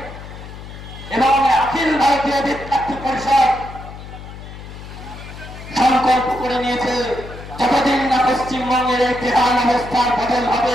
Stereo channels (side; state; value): left; noise; hum, 13 dB below the sound